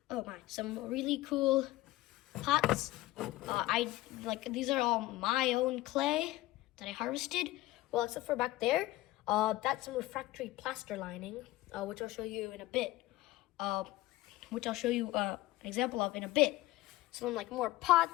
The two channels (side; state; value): right; quieter; 17.5 dB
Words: some really cool pots. These are all my own clay that I harvested. Well, except for back there, that's some refractory plaster lining, which I'll show you in a bit. Which I'll show you an example of in a bit. Some like more